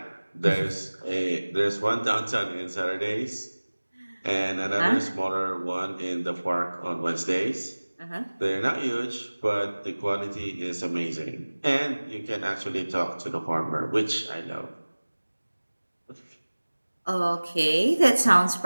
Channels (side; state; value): both; inverted; correlation -1.00